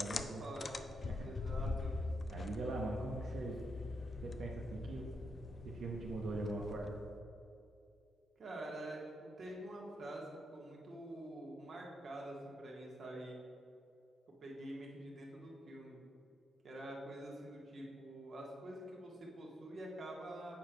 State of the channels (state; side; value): normal; both; correlation 0.81